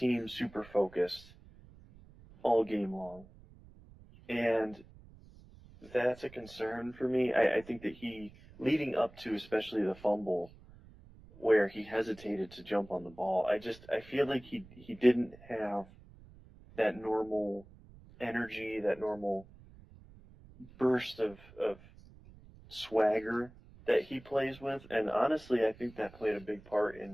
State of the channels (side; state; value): right; noise; rumble, 22 dB below the sound